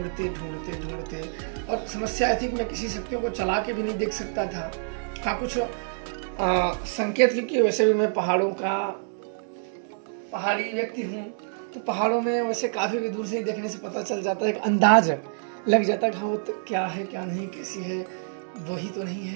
और समस्या आई थी कि मैं किसी शक्तियों को चला के भी नहीं देख सकता था। हाँ, कुछ संकेत, क्योंकि वैसे भी मैं पहाड़ों का पहाड़ी व्यक्ति हूँ, तो पहाड़ों में वैसे काफ़ी भी दूर से ही देखने से पता चल जाता है, एक अंदाज लग जाता है कि हाँ वो तो क्या है क्या नहीं, कैसी है, वही तो नहीं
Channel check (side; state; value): left; silent; digital silence